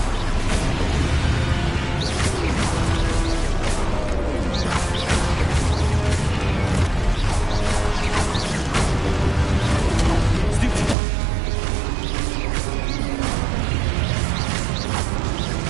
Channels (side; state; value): left; drops out; at 11.0 s